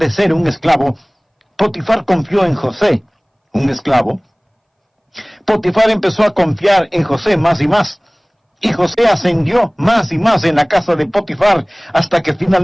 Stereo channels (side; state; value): both; identical; correlation 1.00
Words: ser un esclavo, Potifar confió en José, un esclavo. Potifar empezó a confiar en José más y más. Y José ascendió más y más en la casa de Potifar, hasta que